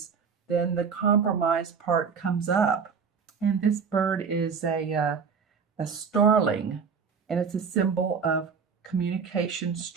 then the compromise part comes up. And this bird is a starling, and it's a symbol of communication,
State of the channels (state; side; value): quieter; left; 6.0 dB